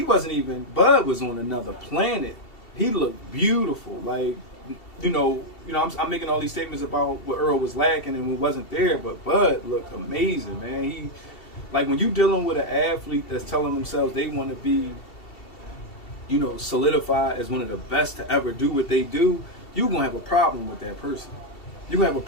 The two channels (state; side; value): late; right; 2.7 ms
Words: wasn't even, Bud was on another planet. He looked beautiful. I'm making all these statements about what Errol was lacking and what wasn't there, but Bud looked amazing, man. When you dealing with an athlete that's telling themselves they want to be, solidified as one of the best to ever do what they do, you're going to have a problem with that person. you're gonna have a